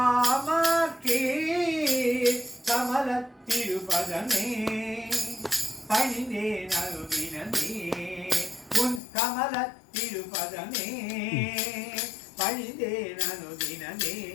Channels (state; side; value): drops out; right; at 9.0 s